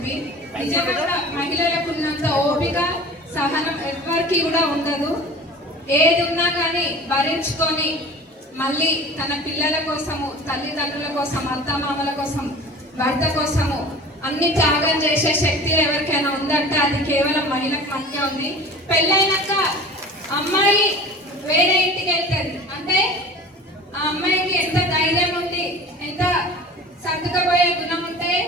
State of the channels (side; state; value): both; normal; correlation 0.40